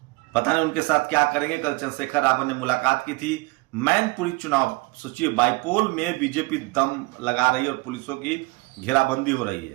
पता नहीं उनके साथ क्या करेंगे। कल चंद्रशेखर रावत ने मुलाकात की थी। मैनपुरी चुनाव, सोचिए, बाइपोल में बीजेपी दम लगा रही है और पुलिसों की घेराबंदी हो रही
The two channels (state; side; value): quieter; left; 24.9 dB